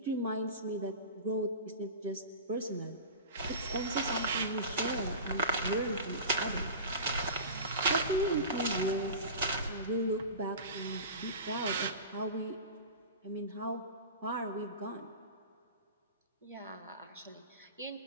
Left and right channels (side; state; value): both; inverted; correlation -0.32